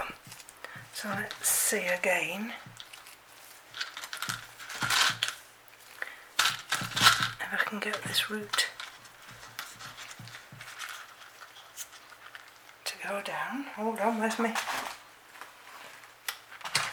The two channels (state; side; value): identical; both; correlation 1.00